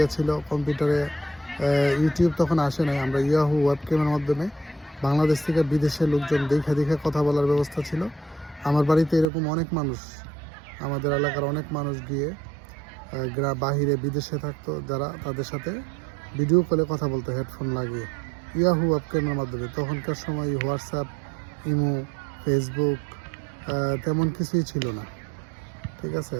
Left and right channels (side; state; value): left; drops out; at 9.2 s